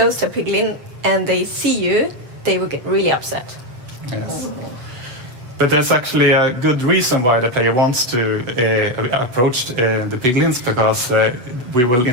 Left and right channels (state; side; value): late; left; 7.9 ms